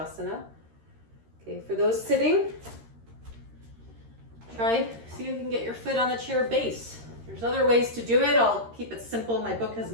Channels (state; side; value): late; left; 13 ms